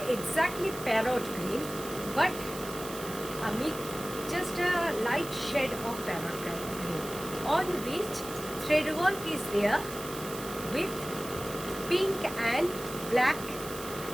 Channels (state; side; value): noise; right; hiss, 12 dB below the sound